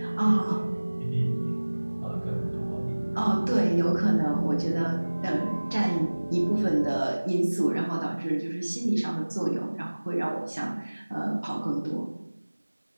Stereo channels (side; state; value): both; inverted; correlation -1.00